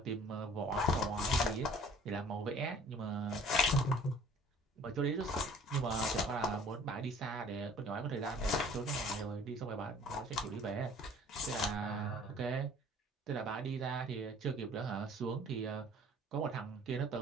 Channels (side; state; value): both; normal; correlation 0.52